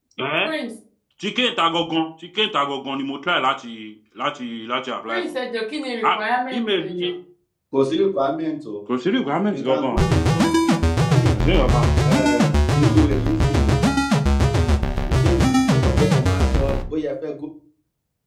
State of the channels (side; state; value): both; identical; correlation 1.00